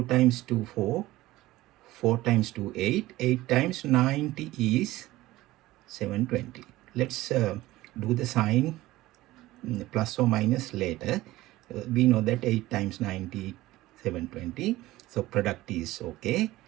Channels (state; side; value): quieter; left; 17.3 dB